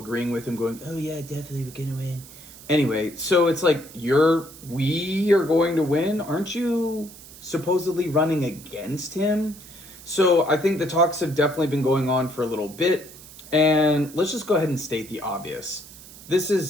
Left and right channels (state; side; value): noise; right; hiss, 18 dB below the sound